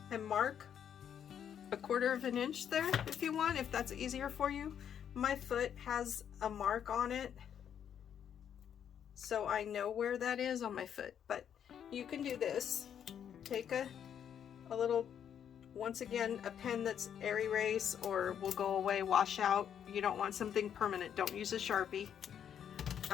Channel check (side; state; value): right; quieter; 8.8 dB